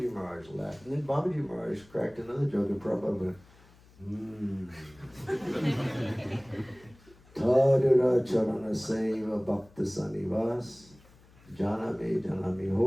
Maharaj laughed. And then Babaji Maharaj cracked another joke, and Prabhupada went, Tadura Charana Seva Bhakta Sanivas, Janame Janami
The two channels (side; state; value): left; noise; hum, 26 dB below the sound